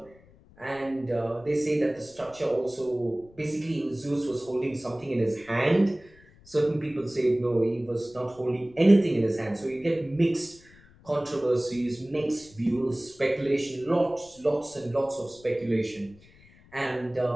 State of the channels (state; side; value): noise; left; rumble, 26 dB below the sound